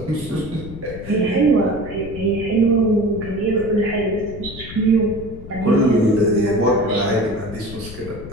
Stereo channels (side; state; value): left; noise; rumble, 13 dB below the sound